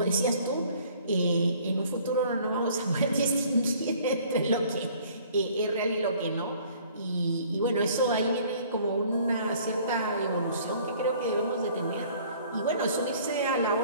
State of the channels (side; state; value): both; inverted; correlation -0.55